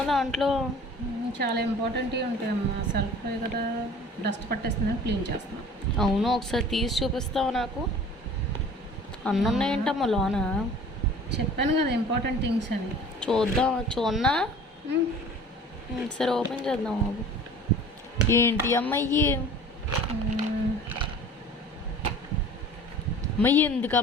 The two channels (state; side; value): normal; both; correlation 0.45